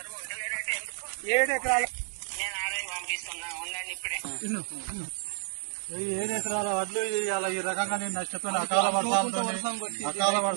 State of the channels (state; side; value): silent; left; 58 dB below the other